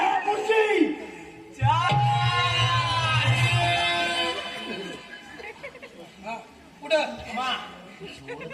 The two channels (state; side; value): identical; both; correlation 1.00